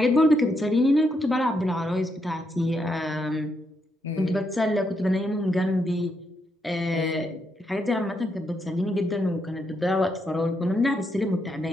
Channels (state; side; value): normal; both; correlation 0.79